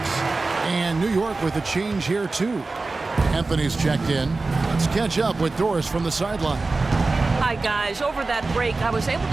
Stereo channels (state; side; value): quieter; left; 3.6 dB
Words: And New York with a change here too. Anthony's checked in. Let's catch up with Doris from the sideline. Hi, guys. Over that break, I was able